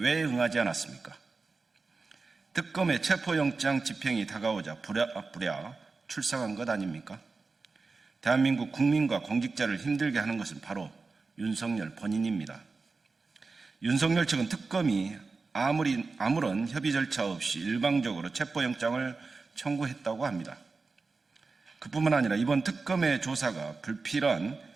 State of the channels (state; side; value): quieter; left; 4.1 dB